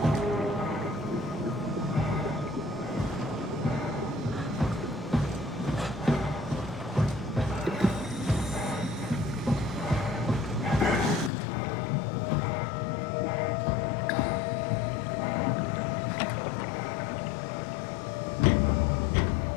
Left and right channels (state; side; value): drops out; right; at 11.3 s